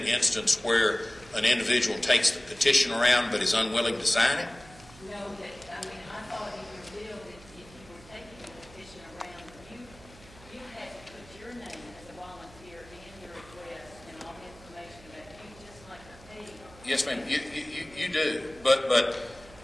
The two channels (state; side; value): noise; right; hum, 22 dB below the sound